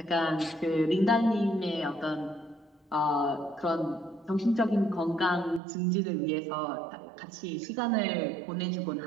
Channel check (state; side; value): drops out; left; at 5.6 s